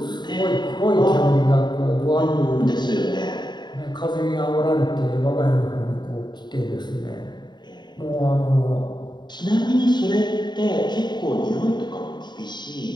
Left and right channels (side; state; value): right; late; 0.21 ms